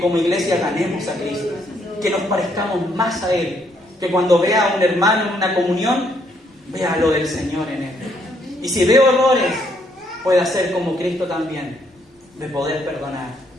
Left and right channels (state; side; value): normal; both; correlation 0.71